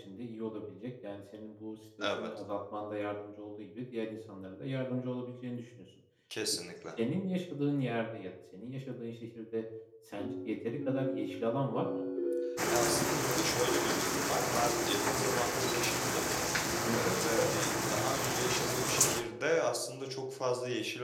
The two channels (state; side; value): identical; both; correlation 1.00